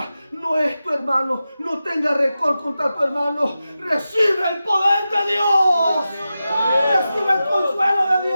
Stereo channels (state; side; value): inverted; both; correlation -0.92